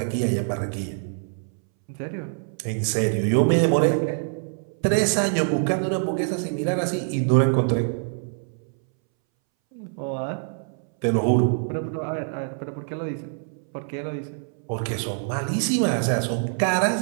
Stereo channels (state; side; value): silent; left; 62 dB below the other